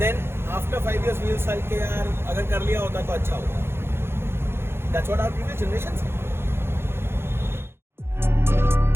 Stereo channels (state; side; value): late; left; 0.12 ms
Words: after 5 years we will say कि यार अगर कर लिया होता तो अच्छा होता. That's what our previous generations said.